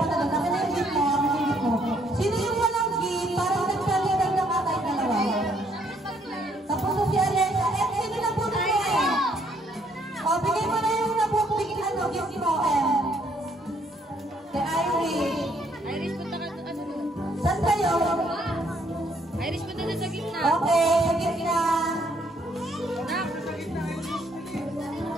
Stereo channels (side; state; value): both; normal; correlation 0.68